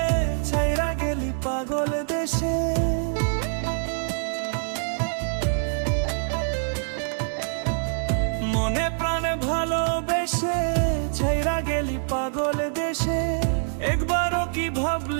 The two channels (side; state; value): left; silent; 62 dB below the other